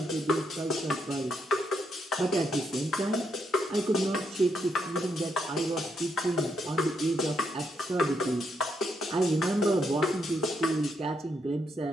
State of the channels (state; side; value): normal; both; correlation 0.78